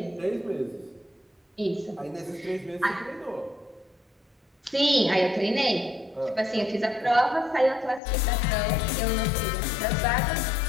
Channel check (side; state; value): right; drops out; at 8.0 s